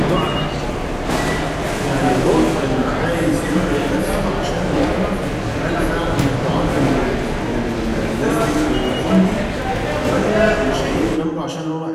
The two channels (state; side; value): identical; both; correlation 1.00